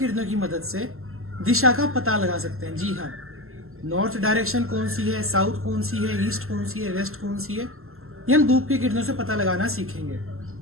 की मदद से दिशा का पता लगा सकते हैं। जी हाँ, नॉर्थ डायरेक्शन कौन सी है, साउथ कौन सी है, ईस्ट कौन सी है, वेस्ट कौन सी है, ये हम धूप की किरणों से पता लगाना सीखेंगे।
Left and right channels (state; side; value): late; left; 0.62 ms